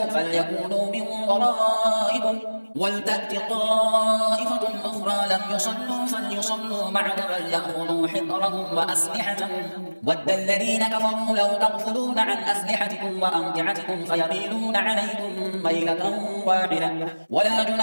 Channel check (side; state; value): both; inverted; correlation -1.00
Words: فليكونوا من ورائكم ولتأت طائفة أخرى لم يصلوا فليصلوا معك وليأخذوا حذرهم وأسلحتهم ود الذين كفروا لو تغفلون عن أسلحتكم وأمتعتكم فيميلون عليكم ميلة واحدة ولا